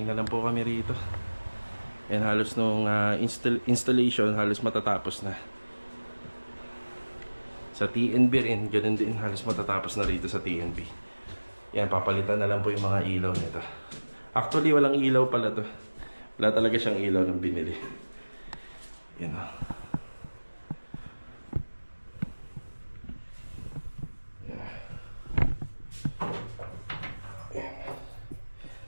na lang po kami rito. Yan, halos nung installation, halos matatapos na. Sa TNB rin, ganun din, halos matatapos na rito sa TNB. Yan, papalitan na lang po yung mga ilaw nito. Actually, walang ilaw pala to. Wala talaga siyang ilaw ng binili. Yan o.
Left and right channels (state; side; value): inverted; both; correlation -1.00